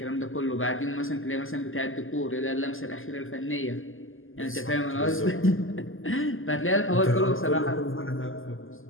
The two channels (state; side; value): late; right; 0.59 ms